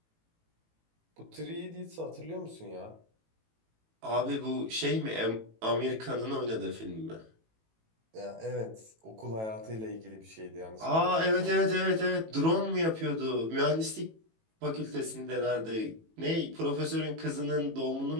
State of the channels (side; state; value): left; late; 18 ms